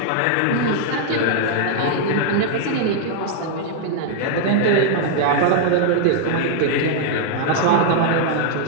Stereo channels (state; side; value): different; both; correlation -0.01